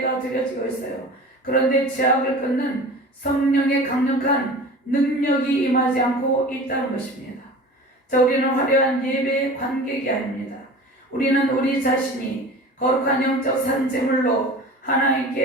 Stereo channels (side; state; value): both; normal; correlation 0.38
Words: 드려지고 있어요. 그런데 죄악을 끊는 성령의 강력한 능력이 임하지 않고 있다는 것입니다. 자, 우리는 화려한 예배의 관객이 아닙니다. 우리는 우리 자신이 거룩한 영적 산제물로